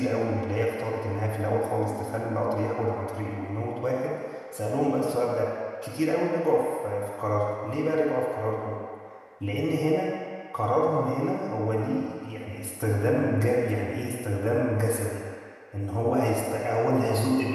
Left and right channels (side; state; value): both; identical; correlation 1.00